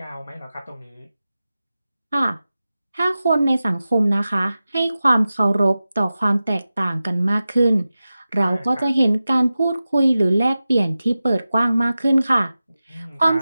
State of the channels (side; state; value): both; inverted; correlation -0.95